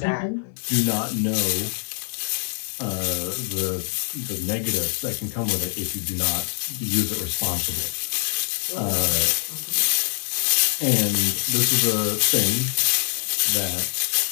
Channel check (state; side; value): silent; right; digital silence